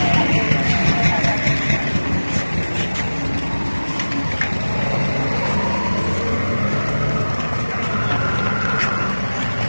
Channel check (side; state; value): both; inverted; correlation -1.00